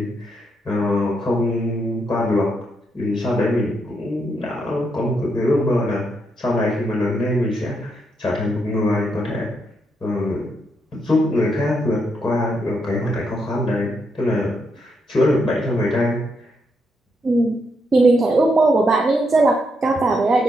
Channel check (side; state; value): both; normal; correlation 0.79